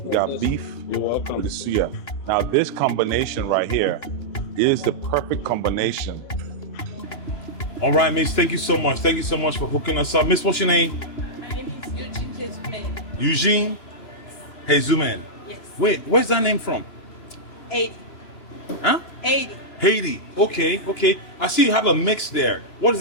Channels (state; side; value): late; right; 2.9 ms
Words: You got this. beef. You're welcome. With the suya. Now this combination right here is the perfect combination. All right, Miss. Thank you so much. Thank you so much for hooking us up. Miss, what's your name? My Jesumen. Eugene Jesumen. Yes. Wait, where's that name from? 80. Huh? 80. Haiti. Okay, okay. I see you have a mix there. What is